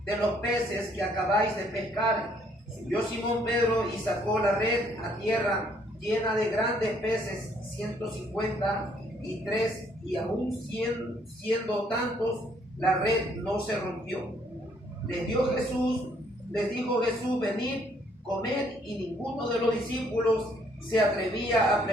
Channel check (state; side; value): normal; both; correlation 0.66